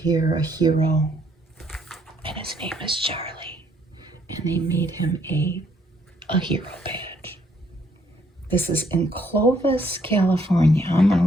A hero. And his name is Charlie. And they made him a hero badge. This is in Clovis, California. I'm going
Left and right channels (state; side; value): normal; both; correlation 0.68